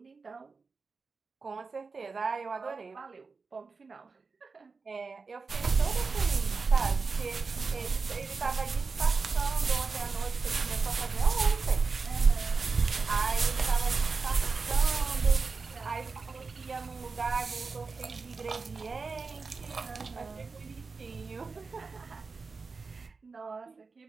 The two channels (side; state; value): left; quieter; 4.5 dB